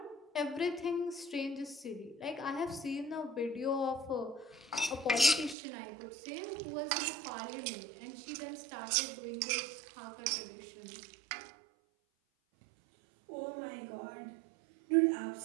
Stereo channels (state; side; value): drops out; left; at 5.6 s